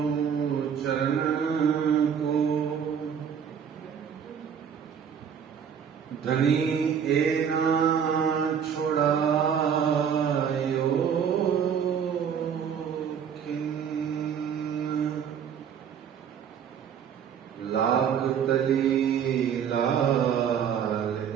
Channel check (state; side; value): quieter; left; 7.8 dB